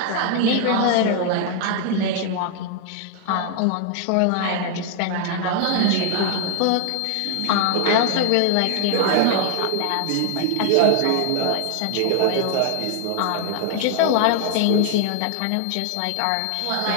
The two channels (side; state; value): both; different; correlation 0.00